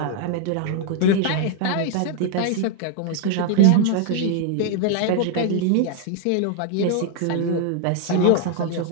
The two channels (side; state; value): both; different; correlation 0.00